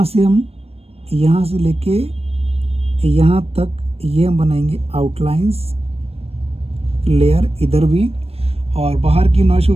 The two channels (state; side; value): late; left; 0.29 ms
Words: से हम यहाँ से लेके यहाँ तक ये हम बनाएंगे आउटलाइंस लेयर इधर भी। और बाहर की नॉइस को